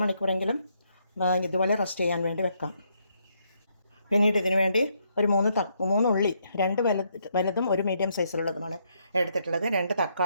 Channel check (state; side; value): inverted; both; correlation -0.75